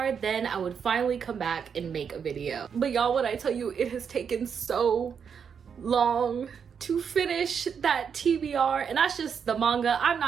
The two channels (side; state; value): left; quieter; 7.0 dB